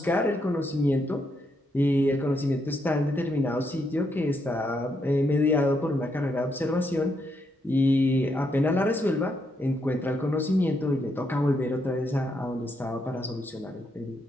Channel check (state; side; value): normal; both; correlation 0.78